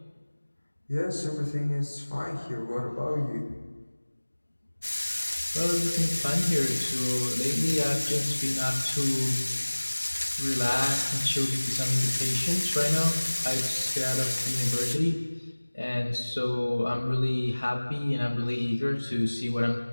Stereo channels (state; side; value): inverted; both; correlation -1.00